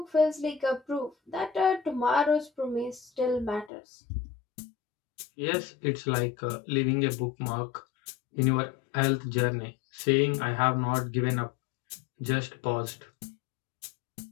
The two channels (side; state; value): right; drops out; at 3.7 s